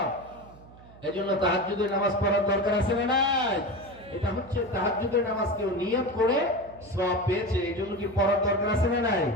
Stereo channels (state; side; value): noise; right; hum, 22 dB below the sound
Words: এজন্য তাহাজ্জুদের নামাজ পড়ার দরকার আছে না নাই? এটা হচ্ছে তাহাজ্জুদের নামাজ কেউ নিয়ত করে সওয়াব পেয়েছে, এজন্য কি পড়ার দরকার আছে না নাই?